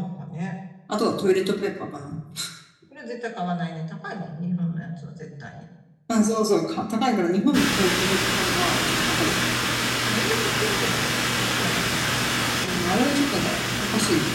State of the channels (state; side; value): identical; both; correlation 1.00